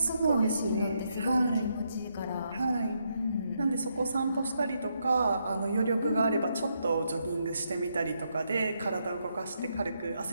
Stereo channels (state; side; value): inverted; both; correlation -0.79